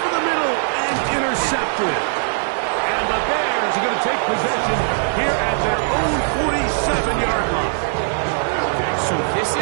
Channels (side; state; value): left; silent; 61 dB below the other